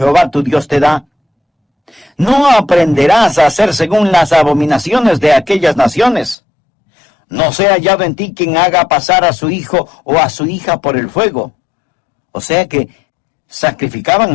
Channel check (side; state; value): right; drops out; at 6.4 s